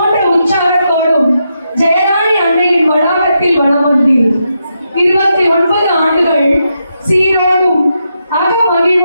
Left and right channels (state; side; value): inverted; both; correlation -0.83